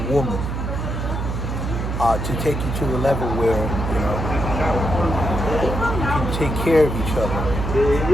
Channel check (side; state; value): right; noise; hum, 3 dB below the sound